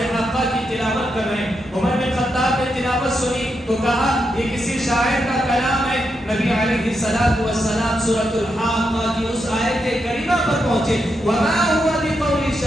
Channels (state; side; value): normal; both; correlation 0.83